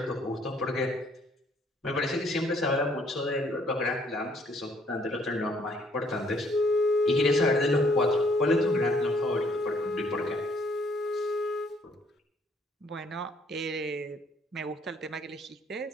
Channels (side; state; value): both; normal; correlation 0.65